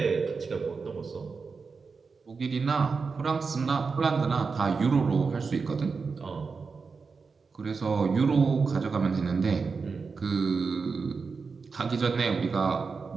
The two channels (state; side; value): quieter; left; 4.9 dB